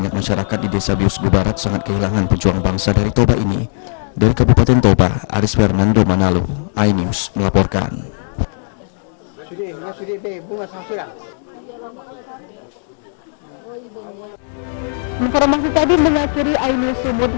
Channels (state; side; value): silent; right; digital silence